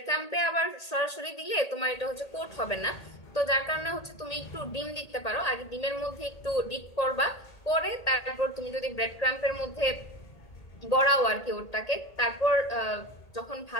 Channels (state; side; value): late; right; 1.8 ms